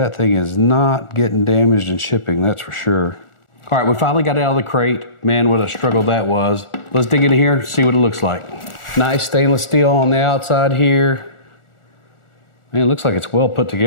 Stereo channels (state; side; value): late; right; 1.4 ms